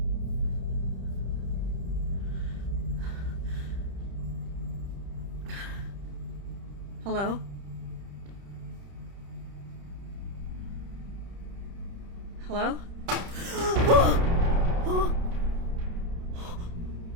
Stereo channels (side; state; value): left; late; 30 ms